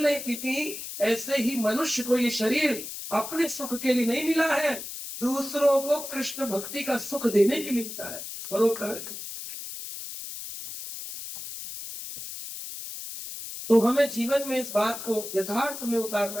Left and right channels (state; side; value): noise; left; hiss, 9 dB below the sound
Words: नहीं पीती, ऐसे ही मनुष्य को ये शरीर अपने सुख के लिए नहीं मिला है, दूसरों को कृष्ण भक्ति का सुख देने के लिए मिला है, परोपकार। तो हमें जीवन में इस बात को यथार्थ में